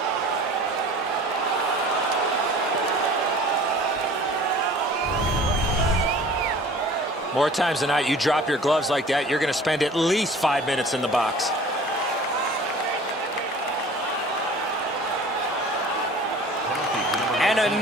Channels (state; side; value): normal; both; correlation 0.45